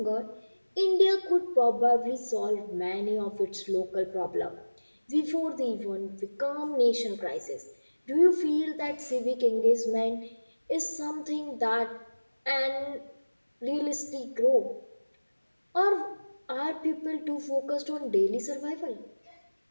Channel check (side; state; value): both; inverted; correlation -1.00